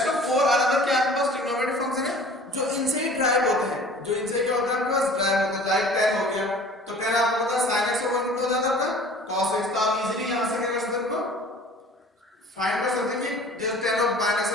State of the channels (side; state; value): both; normal; correlation 0.47